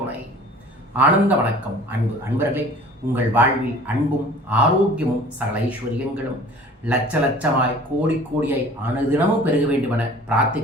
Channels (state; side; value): normal; both; correlation 0.46